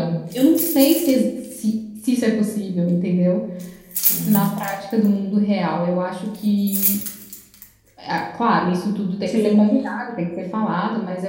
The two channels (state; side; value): identical; both; correlation 1.00